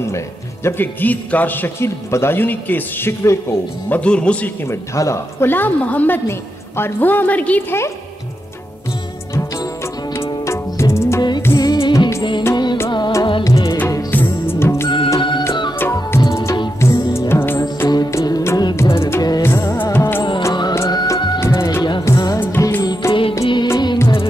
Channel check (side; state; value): both; normal; correlation 0.86